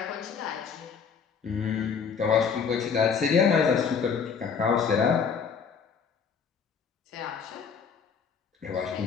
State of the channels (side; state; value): right; quieter; 6.3 dB